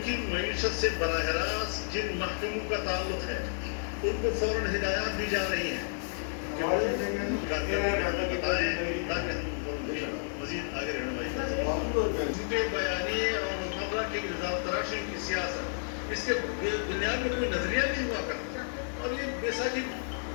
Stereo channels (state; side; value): silent; right; digital silence